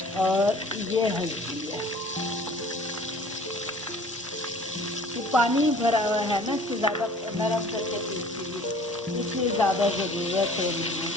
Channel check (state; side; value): normal; both; correlation 0.49